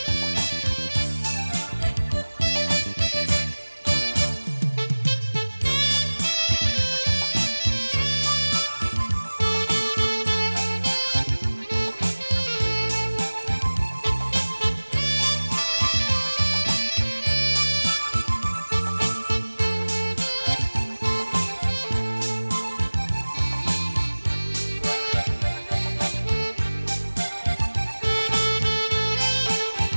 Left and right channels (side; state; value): both; inverted; correlation -1.00